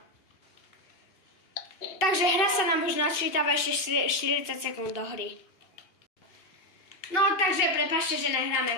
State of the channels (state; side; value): late; right; 2.6 ms